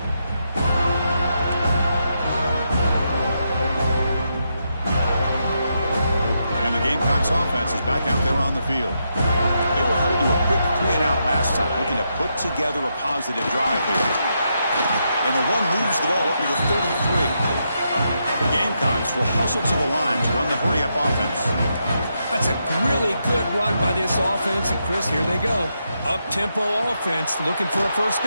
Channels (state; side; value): inverted; both; correlation -0.82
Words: And the Gamecocks offense is back out there on the field. They were held to a quick 3-and-out last time, looking to put together a positive drive here. And the one moves the ball up to the 33. The Gamecocks will hustle to the line to run the hurry-up offense. That's a really good run by this offense. And, Chris, here they go. Up-tempo offense looking for a first